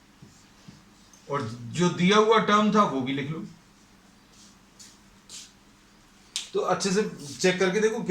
और जो दिया हुआ टर्म था वो भी लिख लो। तो अच्छे से चेक करके देखो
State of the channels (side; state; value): both; identical; correlation 1.00